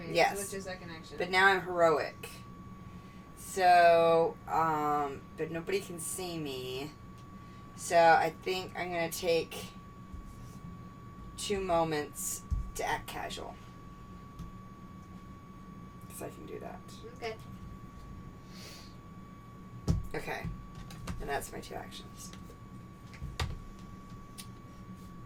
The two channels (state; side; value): identical; both; correlation 1.00